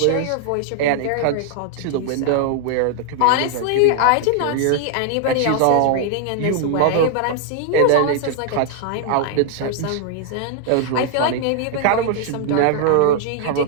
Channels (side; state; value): both; different; correlation 0.00